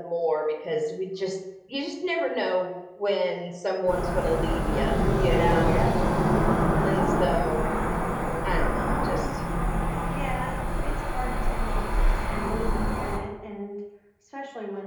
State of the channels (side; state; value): both; identical; correlation 1.00